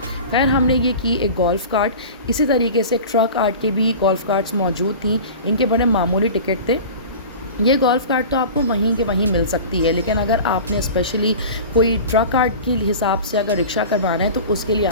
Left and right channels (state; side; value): inverted; both; correlation -0.36